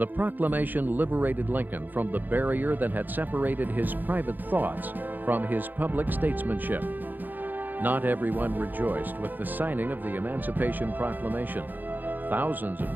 proclamation liberated Lincoln from the barrier that had separated his private thoughts from his public statesmanship. Not everyone rejoiced with the signing of the Emancipation Proclamation. Thousands of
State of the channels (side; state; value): left; late; 0.086 ms